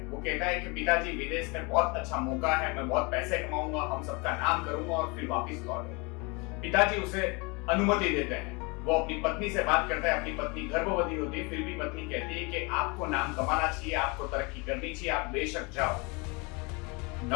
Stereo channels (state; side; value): quieter; right; 29.0 dB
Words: वो कहता है कि पिताजी, विदेश में बहुत अच्छा मौका है, मैं बहुत पैसे कमाऊंगा, हम सबका नाम करूंगा और फिर वापस लौटूंगा। पिताजी उसे अनुमति देते हैं। वो अपनी पत्नी से बात करता है। अपनी पत्नी गर्भवती होती है, फिर भी पत्नी कहती है कि आपको नाम कमाना चाहिए, आपको तरक्की करनी चाहिए, आप बेशक जाओ।